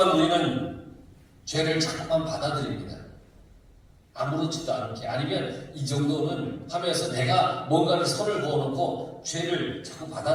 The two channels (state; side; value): identical; both; correlation 1.00